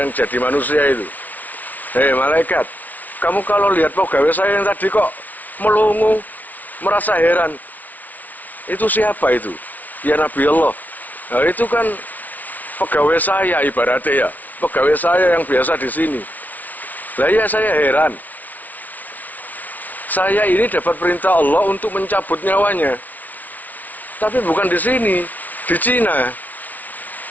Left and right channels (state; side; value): late; right; 0.077 ms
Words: jadi manusia itu. Hei malaikat, kamu kalau lihat pegawai saya yang tadi kok melongo, merasa heran. Itu siapa itu? Ya Nabi Allah. Nah, itu kan pegawai saya ibaratnya ya. Pegawai saya yang biasa di sini. Lah ya saya heran. Saya ini dapat perintah Allah untuk mencabut nyawanya. Tapi bukan di sini, di Cina.